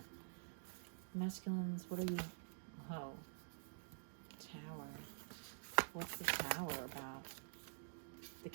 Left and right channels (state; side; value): silent; left; digital silence